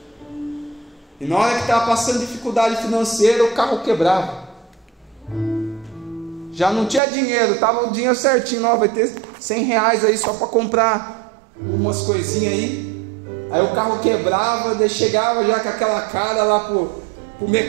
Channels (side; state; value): left; drops out; at 7.0 s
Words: e na hora que estava passando dificuldade financeira, o carro quebrava. Já não tinha dinheiro, estava o dinheiro certinho, ó, vai ter 100 reais aí só para comprar umas coisinhas aí. Aí o carro quebrava, daí chegava já com aquela cara lá pro